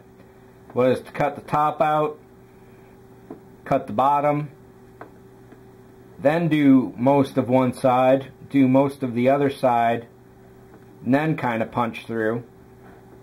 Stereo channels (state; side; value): identical; both; correlation 1.00